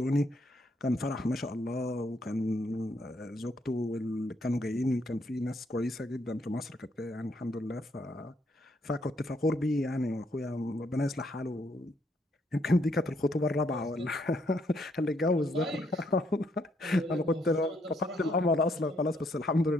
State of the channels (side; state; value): both; normal; correlation 0.72